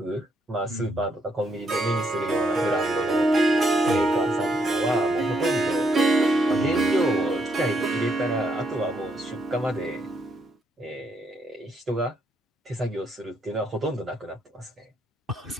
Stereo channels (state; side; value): normal; both; correlation 0.75